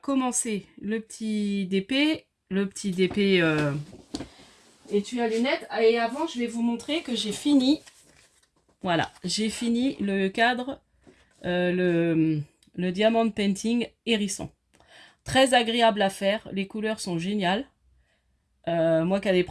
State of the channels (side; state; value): both; identical; correlation 1.00